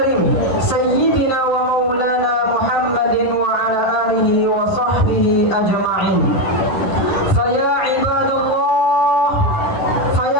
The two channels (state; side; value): late; right; 10 ms